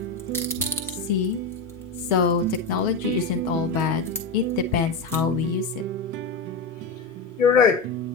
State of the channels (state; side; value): quieter; right; 3.6 dB